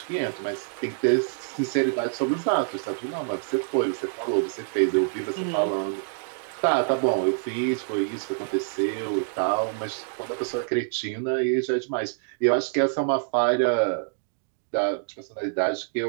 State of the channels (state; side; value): silent; left; digital silence